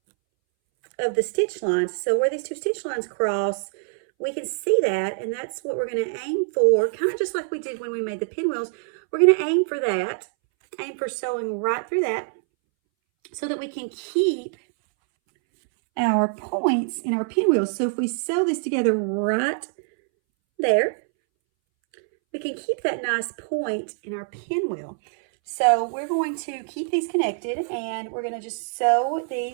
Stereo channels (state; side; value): silent; left; 62 dB below the other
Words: of the stitch lines. So where these two stitch lines cross, we can see that, and that's what we're going to aim for, kind of just like we did when we made the pinwheels. We're going to aim for that, aim for sewing right through that, so that we can keep our points in our pinwheels. So if we sew this together right there, we can keep that nice point in our pinwheel. So we're going to keep these connected, and we're going to just sew